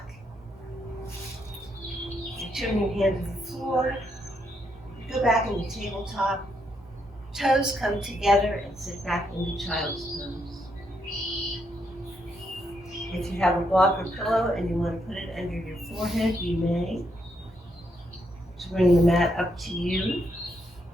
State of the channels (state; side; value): normal; both; correlation 0.77